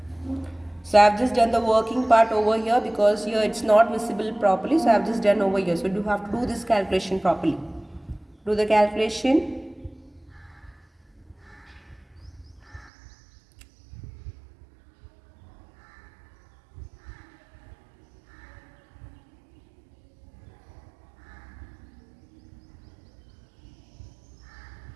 So I have just done the working part over here because here it's not visible properly. So I have just done over here. So you have to do this calculation properly. Do the calculation.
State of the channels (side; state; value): left; drops out; at 12.9 s